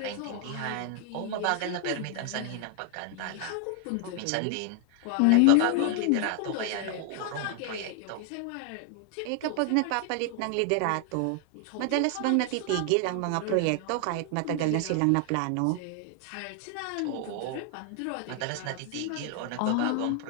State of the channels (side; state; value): both; different; correlation 0.00